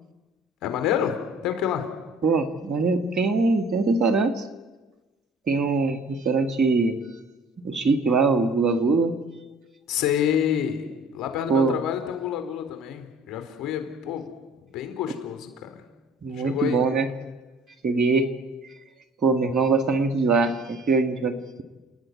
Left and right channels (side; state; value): both; normal; correlation 0.50